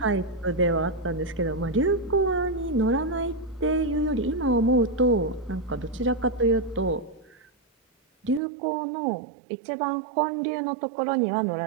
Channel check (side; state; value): left; drops out; at 8.4 s